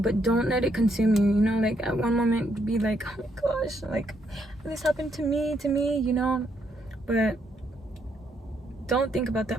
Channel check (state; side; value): normal; both; correlation 0.74